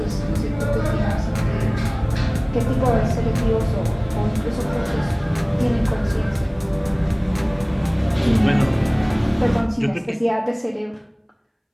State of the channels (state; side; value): identical; both; correlation 1.00